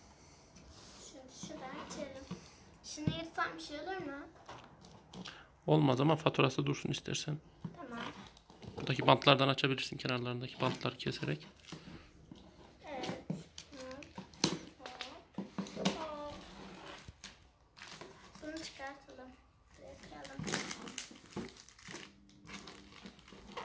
Şuradan açalım. Şunu yırtsam bir şey olur mu? Olmaz ama faturası dursun istersen. Tamam. Buradaki bantlardan açabilirsin, kenarlarındaki bantları keserek. Evet. Hop. Bunu çıkartalım. Bırakalım.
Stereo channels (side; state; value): both; identical; correlation 1.00